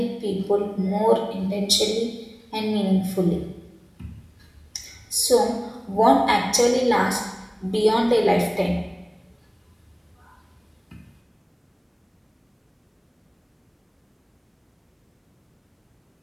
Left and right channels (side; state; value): both; identical; correlation 1.00